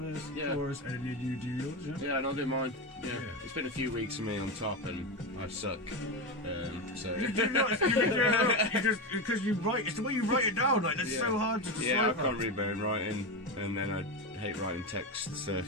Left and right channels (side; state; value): both; normal; correlation 0.15